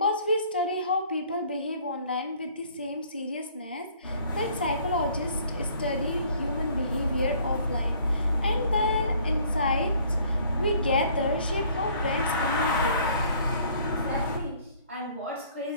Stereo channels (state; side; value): inverted; both; correlation -0.57